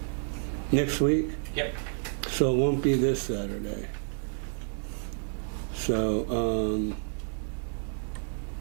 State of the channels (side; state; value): left; silent; digital silence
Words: Next week? Yep. So it won't be this Saturday. So,